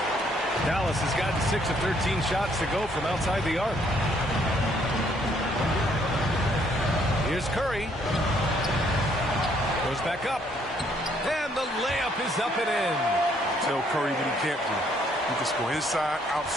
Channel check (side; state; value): both; normal; correlation 0.67